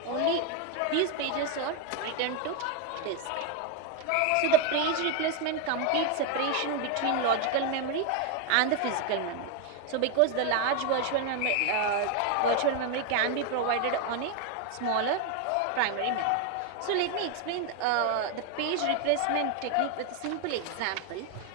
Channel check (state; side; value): different; both; correlation 0.01